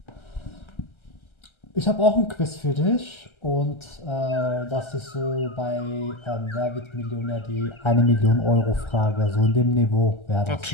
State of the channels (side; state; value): right; late; 1.3 ms